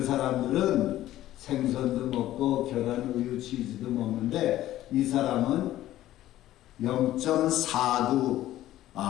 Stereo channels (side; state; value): right; quieter; 14.1 dB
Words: 사람들은 생선도 먹고 계란, 우유, 치즈도 먹는데 이 사람은 0.49,